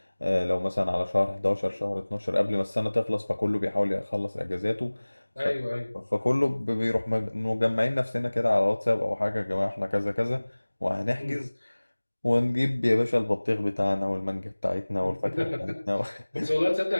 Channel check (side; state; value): both; inverted; correlation -1.00